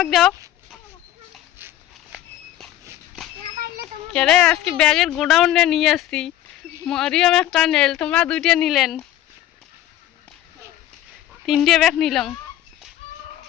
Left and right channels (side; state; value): right; quieter; 13.1 dB